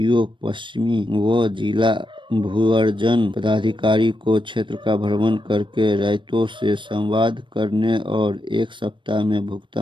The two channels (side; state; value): left; late; 0.24 ms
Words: पश्चिमी व जिला भूअर्जन पदाधिकारी को क्षेत्र का भ्रमण करके रायतों से संवाद करने और 1 सप्ताह में